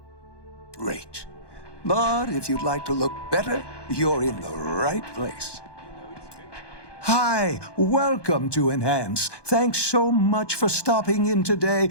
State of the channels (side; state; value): right; late; 1.2 ms